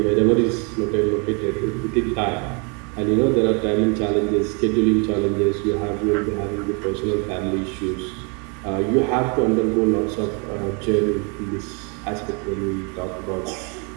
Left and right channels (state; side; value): quieter; left; 34.5 dB